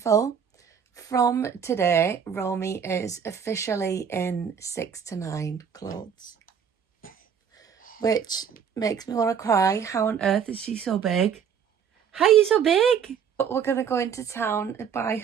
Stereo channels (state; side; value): quieter; left; 7.5 dB